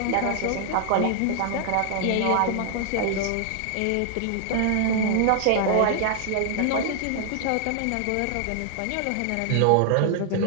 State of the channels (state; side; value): different; both; correlation 0.00